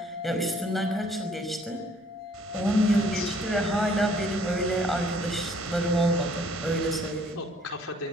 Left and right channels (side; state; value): both; normal; correlation 0.61